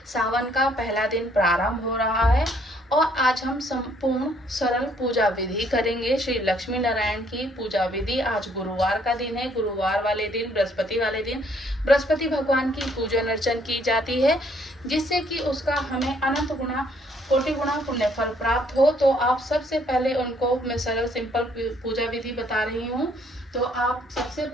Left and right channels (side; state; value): both; normal; correlation 0.66